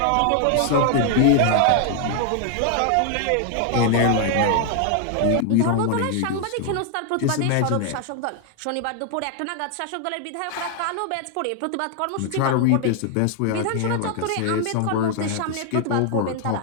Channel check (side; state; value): both; different; correlation 0.00